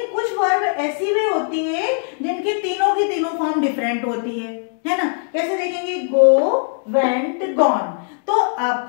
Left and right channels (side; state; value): right; silent; 64 dB below the other